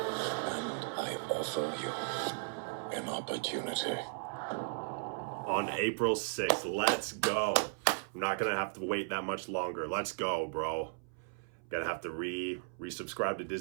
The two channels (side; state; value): left; silent; 54 dB below the other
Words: I offer you an opportunity. On April 6th, let's go. I'm not gonna have to wait that much longer. Let's go, bro. Gonna have to resubscribe to